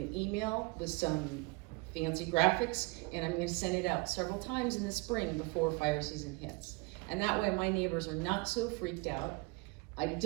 email with some fancy graphics, and I'm going to send it out several times in the spring before fire season hits. And that way my neighbors are not so freaked out. I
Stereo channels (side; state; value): left; quieter; 26.2 dB